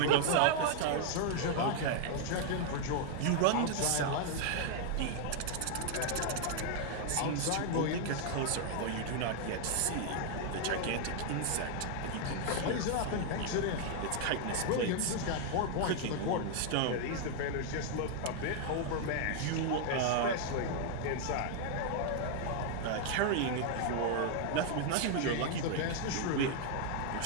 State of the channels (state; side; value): different; both; correlation 0.00